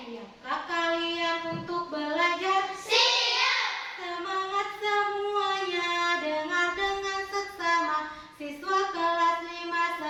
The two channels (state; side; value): identical; both; correlation 1.00